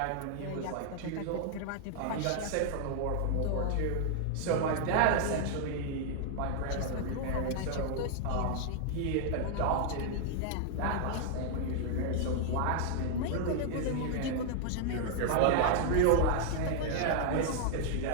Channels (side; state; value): both; different; correlation -0.01